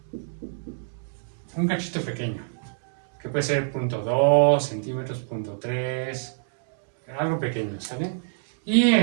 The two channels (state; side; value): silent; left; digital silence